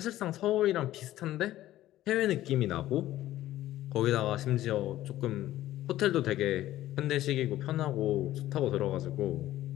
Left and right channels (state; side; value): quieter; right; 14.4 dB